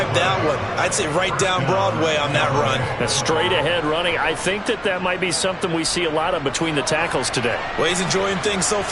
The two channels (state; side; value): identical; both; correlation 1.00